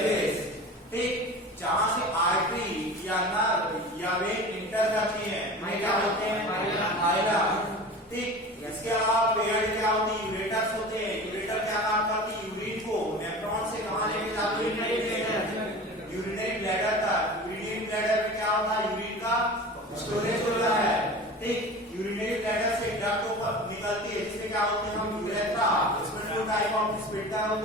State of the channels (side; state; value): both; normal; correlation 0.35